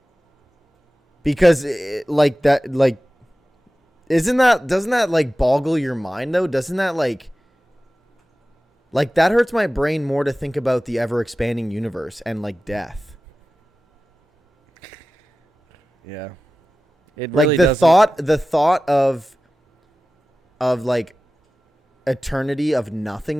Because doesn't that like boggle your mind though? Doesn't that like that hurts my brain more to think about the ever expanding universe and like death. Yeah. It Like really the doesn't. thought of like eternity of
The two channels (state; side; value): normal; both; correlation 0.95